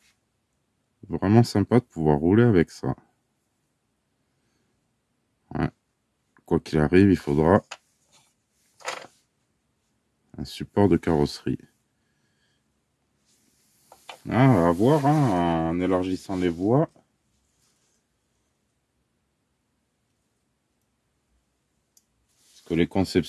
vraiment sympa de pouvoir rouler avec ça. Ouais. Quoi qu'il arrive, il faudra un support de carrosserie. Ah, à voir, hein, en élargissant les voies. Parce que les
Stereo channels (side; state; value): both; identical; correlation 1.00